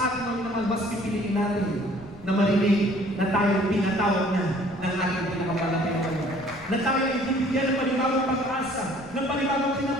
mga minamahal, mas pipiliin natin na marinig na tayo pinatawag na ng ating pinakamahal na Panginoon. Na tayo ay bibigyan ng panibagong pag-asa, ng panibagong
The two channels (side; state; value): left; noise; rumble, 22 dB below the sound